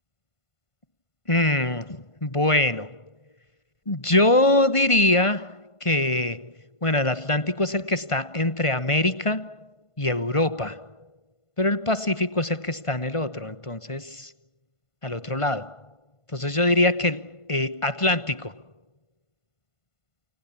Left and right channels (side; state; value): right; late; 1.5 ms